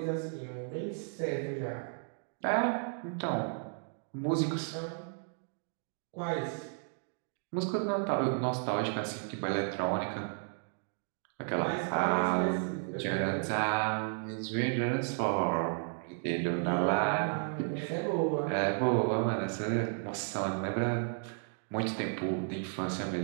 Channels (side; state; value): left; silent; 55 dB below the other